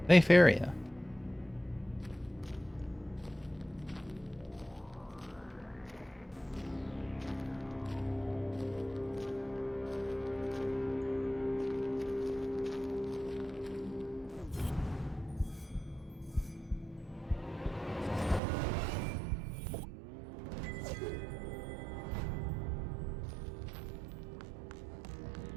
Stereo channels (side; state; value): left; drops out; at 18.4 s